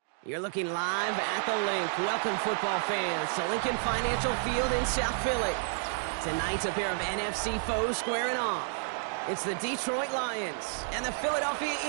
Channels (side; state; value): left; silent; digital silence